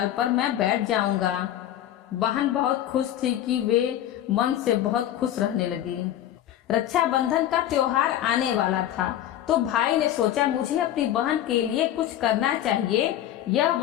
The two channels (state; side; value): quieter; right; 12.0 dB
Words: पर मैं बैठ जाऊंगा। बहन बहुत खुश थी कि वे मन से बहुत खुश रहने लगी। रक्षाबंधन का त्योहार आने वाला था तो भाई ने सोचा, मुझे अपनी बहन के लिए कुछ करना चाहिए। यह